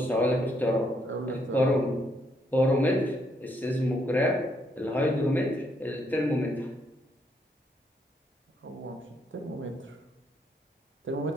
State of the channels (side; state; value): both; normal; correlation 0.74